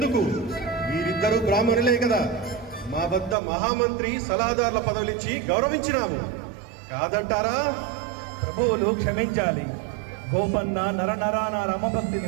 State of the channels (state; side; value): drops out; left; at 3.4 s